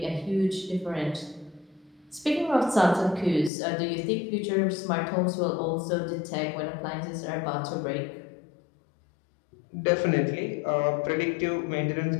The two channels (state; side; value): drops out; right; at 3.5 s